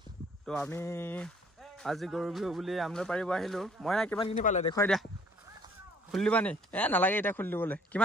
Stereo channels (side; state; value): both; normal; correlation 0.59